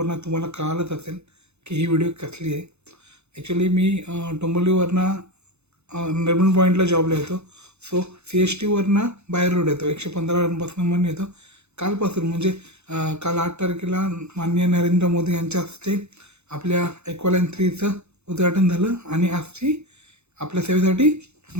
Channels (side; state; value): left; late; 0.81 ms